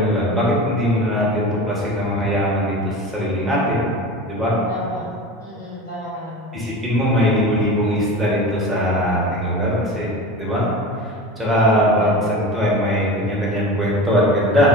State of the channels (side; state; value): both; normal; correlation 0.31